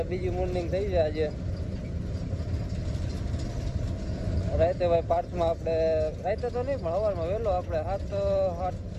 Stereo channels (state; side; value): identical; both; correlation 1.00